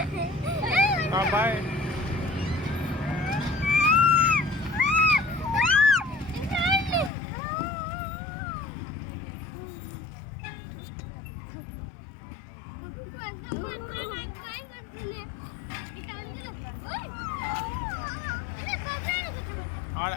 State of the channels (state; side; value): drops out; right; at 7.1 s